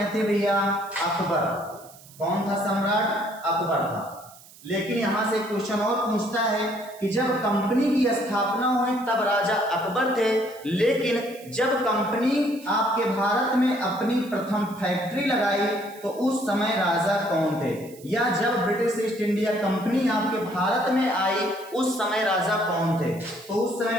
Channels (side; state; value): right; noise; hiss, 22 dB below the sound